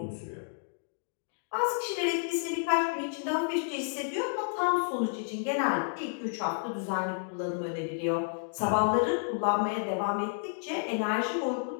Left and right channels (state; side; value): silent; right; digital silence